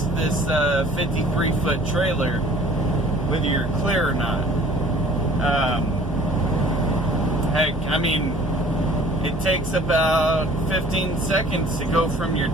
this 53-foot trailer whether you're clear or not. Heck, I mean, it takes about 15 seconds to go from your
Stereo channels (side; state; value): both; normal; correlation 0.51